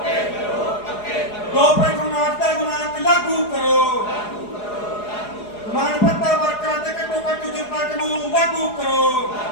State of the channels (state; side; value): late; right; 4.8 ms